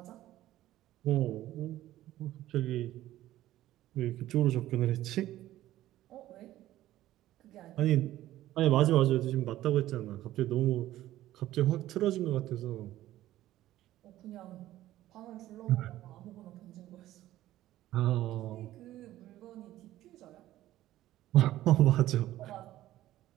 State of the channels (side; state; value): left; quieter; 14.5 dB